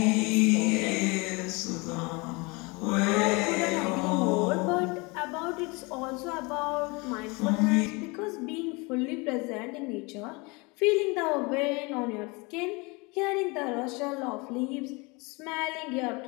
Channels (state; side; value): quieter; right; 27.3 dB